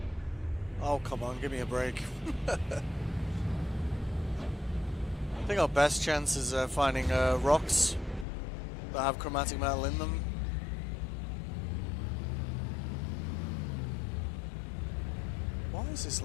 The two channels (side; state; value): right; drops out; at 8.2 s